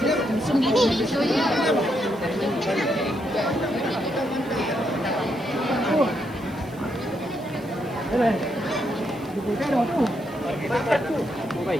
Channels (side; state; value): right; noise; hiss, 25 dB below the sound